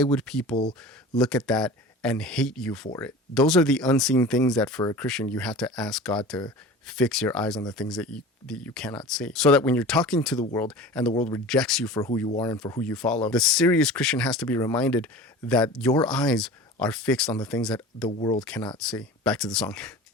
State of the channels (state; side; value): normal; both; correlation 0.37